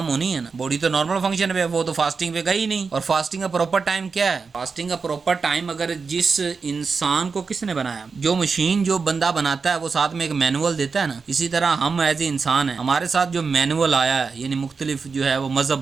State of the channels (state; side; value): quieter; left; 5.0 dB